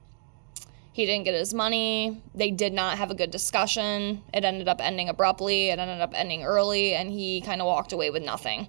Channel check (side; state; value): left; silent; digital silence